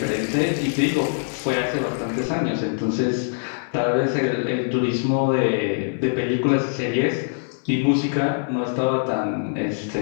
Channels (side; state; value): right; silent; digital silence